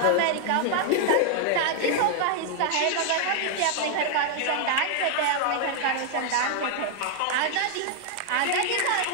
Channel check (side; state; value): both; different; correlation 0.00